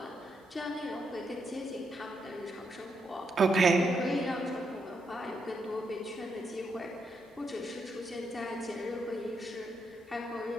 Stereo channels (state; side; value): normal; both; correlation 0.80